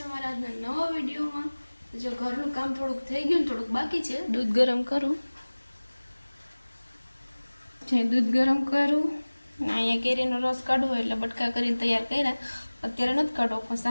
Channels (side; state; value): both; inverted; correlation -1.00